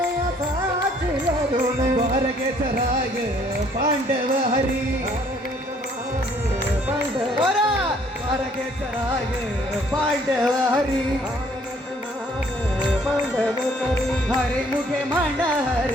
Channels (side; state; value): both; normal; correlation 0.62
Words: സാക്ഷിയകുനെ ദ്വാരകേശ്വരായ പാണ്ഡവ ഹരി ദ്വാരകേശ്വരായ പാണ്ഡവ ഹരി ഹരിമുഖേ മണ